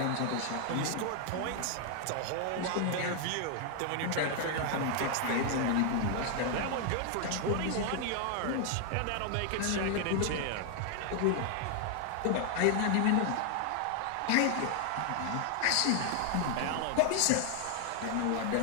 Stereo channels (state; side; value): different; both; correlation 0.00